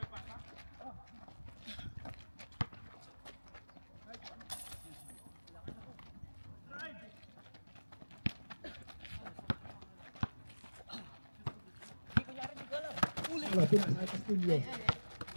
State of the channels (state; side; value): inverted; both; correlation -1.00